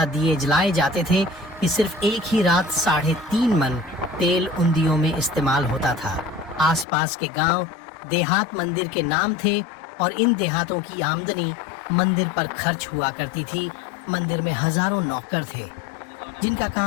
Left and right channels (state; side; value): drops out; right; at 6.9 s